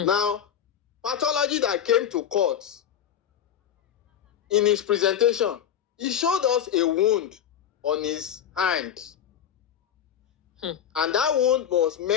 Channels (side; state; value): right; quieter; 9.3 dB